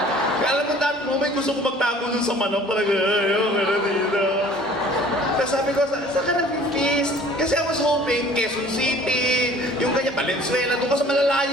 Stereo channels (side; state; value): both; normal; correlation 0.51